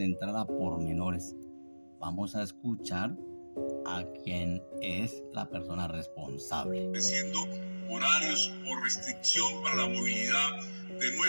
a pormenores. Vamos a escuchar a quien es la persona responsable. Estableciendo horarios o restricción para la movilidad de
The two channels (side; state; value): both; inverted; correlation -1.00